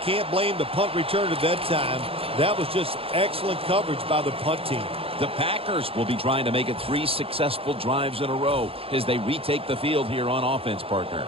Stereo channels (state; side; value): late; left; 0.27 ms